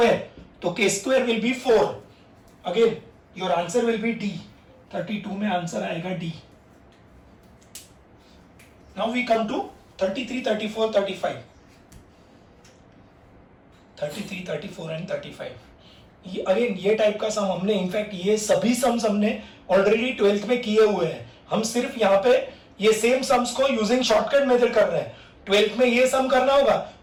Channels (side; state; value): both; identical; correlation 1.00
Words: तो k square will be 4। Again your answer will be D। 32 में आंसर आएगा D। Now we come to 33 34 35। 33 34 and 35 ये अगेन ये टाइप का सम हमने, इनफैक्ट ये सभी सम्स हमने ऑलरेडी 12th में किए हुए हैं। हम सिर्फ यहाँ पे ये सेम सम्स को यूजिंग शॉर्टकट मेथड कर रहे हैं। 12th में ये सम करना होगा